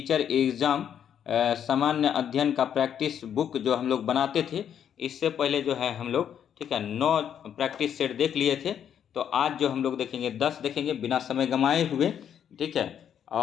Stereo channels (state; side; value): quieter; right; 9.0 dB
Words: एग्ज़ाम सामान्य अध्ययन का प्रैक्टिस बुक जो हम लोग बनाते थे, इससे पहले जो है हम लोग ठीक है 9 प्रैक्टिस सेट देख लिए थे। तो आज जो हम लोग देखेंगे 10 देखेंगे बिना समय गंवाए हुए, ठीक है।